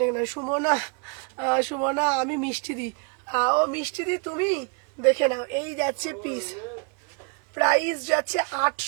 না, সুমনা, সুমনা আমি মিষ্টি দি, ও মিষ্টি দি তুমি, দেখে নাও। এই যাচ্ছে পিস, প্রাইস যাচ্ছে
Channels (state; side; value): quieter; left; 35.7 dB